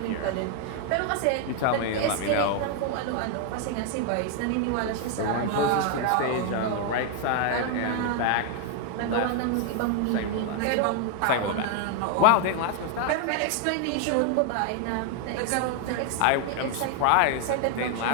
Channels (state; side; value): different; both; correlation 0.00